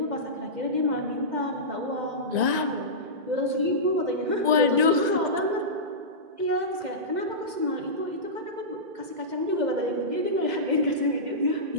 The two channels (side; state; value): left; late; 1.9 ms